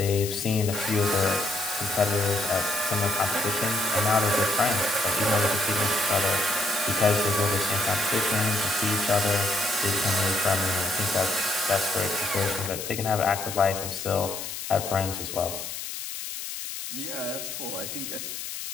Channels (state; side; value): noise; left; hiss, 7 dB below the sound